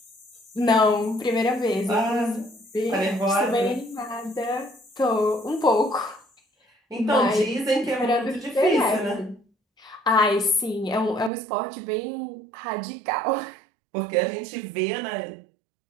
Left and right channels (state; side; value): drops out; left; at 11.3 s